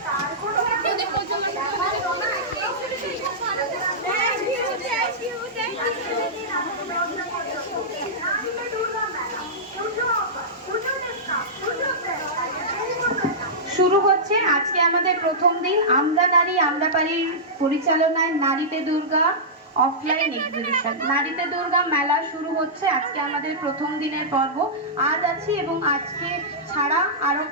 শুরু হচ্ছে আজকে আমাদের প্রথম দিন আমরা নারী আমরা পারির পরিচালনায় নারীতে দুর্গা অফলাইন এক্সিবিশন। নারীতে দুর্গা মেলা শুরু হচ্ছে আজকে আমাদের প্রথম দিনের পর্ব। আজ আছি এবং আজকে ছাড়া আরো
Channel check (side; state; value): both; normal; correlation -0.14